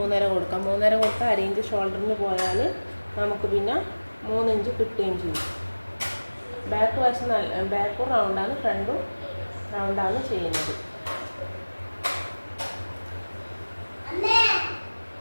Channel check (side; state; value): both; inverted; correlation -1.00